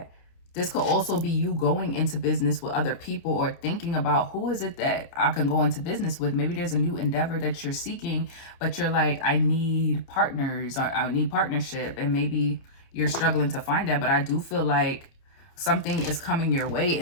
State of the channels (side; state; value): right; late; 29 ms